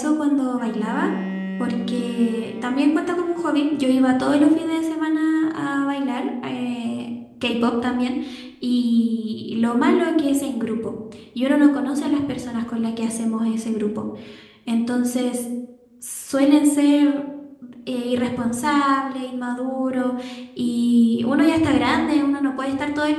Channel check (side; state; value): both; identical; correlation 1.00